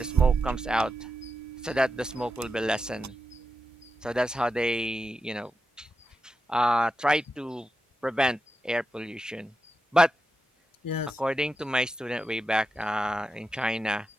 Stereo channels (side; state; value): both; normal; correlation 0.88